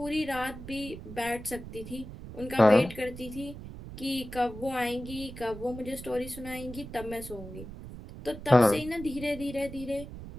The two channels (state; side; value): noise; right; rumble, 12 dB below the sound